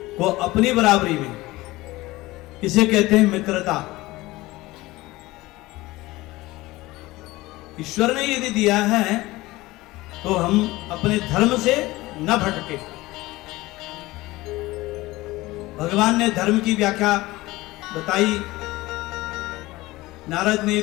को अपनी बराबरी में, इसे कहते हैं मित्रता। ईश्वर ने यदि दिया है तो हम अपने धर्म से न भटके। भगवान ने धर्म की व्याख्या बताई, नारद ने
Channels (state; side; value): quieter; right; 19.4 dB